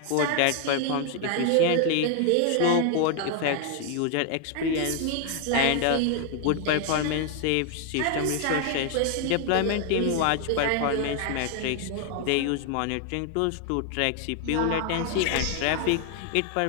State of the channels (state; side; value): different; both; correlation 0.00